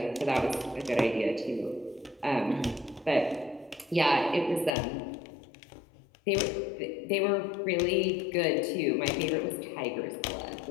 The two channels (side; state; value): right; drops out; at 4.8 s